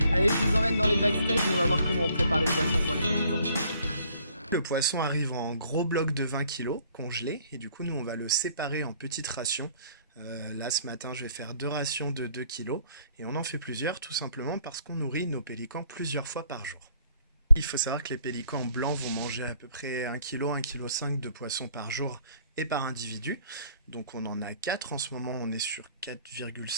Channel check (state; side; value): inverted; both; correlation -0.61